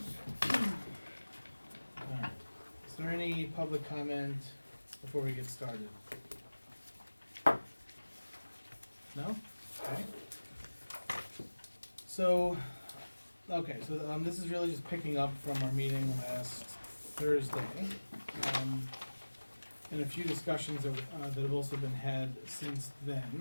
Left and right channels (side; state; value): both; inverted; correlation -1.00